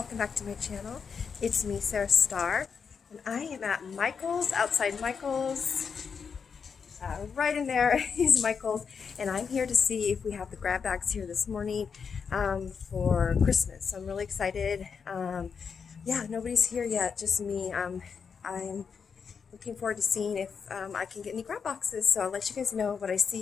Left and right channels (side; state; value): right; quieter; 6.1 dB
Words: back to my channel. It's me, MESARASTARR, and I am at Michael's, outside Michael's. Right in there is Michael's, and I'm here to see if we have the grab bags here this morning for Christmas. So I'm really excited. Yeah, nobody's here yet, just me. I'm looking forward to seeing if I can get any grab boxes. So I'll let you guys know what I